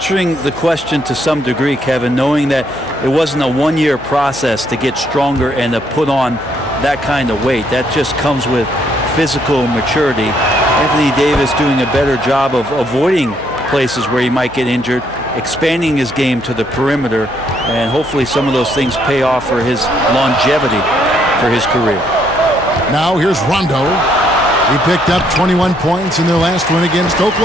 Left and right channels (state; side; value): noise; left; hum, 21 dB below the sound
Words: the question to some degree, Kevin, knowing that it wasn't a one-year process to get stronger and to put on that kind of weight. That just comes with physical maturity. Anthony Davis doing a better job of avoiding places where he might get injured, expanding his game to the perimeter, and hopefully some of those things pay off for his longevity for his career. Now here's Rondo. He picked up 21 points in their last win against